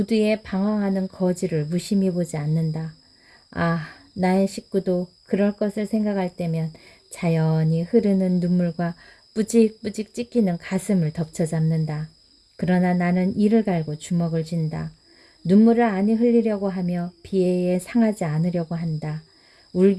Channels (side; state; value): both; identical; correlation 1.00